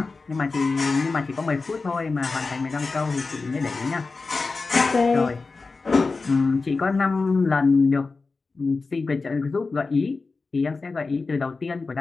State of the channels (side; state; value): right; quieter; 4.0 dB